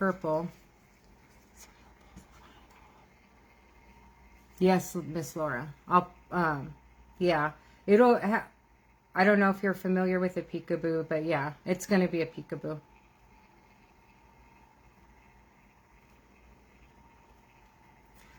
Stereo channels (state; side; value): identical; both; correlation 1.00